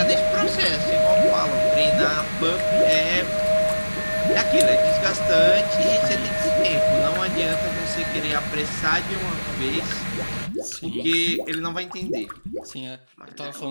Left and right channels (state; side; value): inverted; both; correlation -1.00